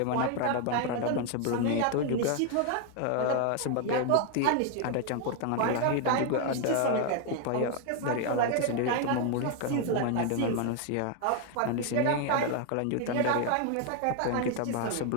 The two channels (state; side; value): different; both; correlation 0.01